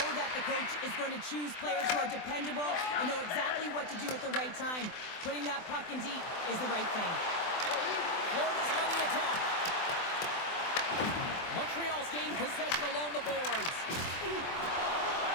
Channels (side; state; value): right; late; 24 ms